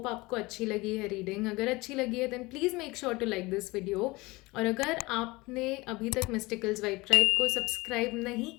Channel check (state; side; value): quieter; right; 22.4 dB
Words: आपको अच्छी लगी है रीडिंग। अगर अच्छी लगी है then please make sure to like this video, और अगर आपने अभी तक मिस्टिकल्स वाइब ट्राइब को सब्सक्राइब नहीं